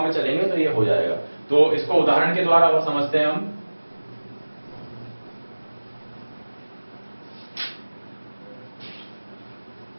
में चलेंगे तो ये हो जाएगा। तो इसको उदाहरण के द्वारा और समझते हैं हम।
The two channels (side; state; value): both; inverted; correlation -1.00